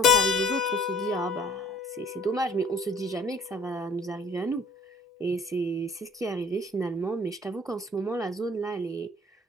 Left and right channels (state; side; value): normal; both; correlation 0.52